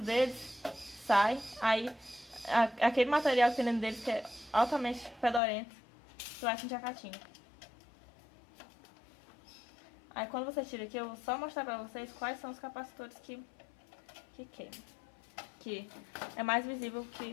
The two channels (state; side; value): drops out; right; at 5.4 s